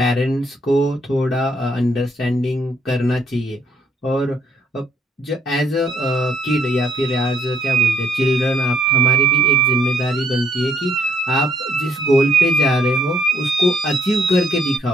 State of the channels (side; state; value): both; normal; correlation 0.68